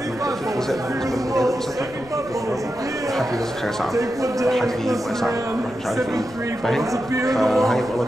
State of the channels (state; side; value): noise; left; rumble, 22 dB below the sound